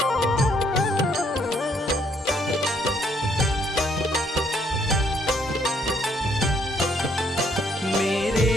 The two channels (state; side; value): normal; both; correlation 0.69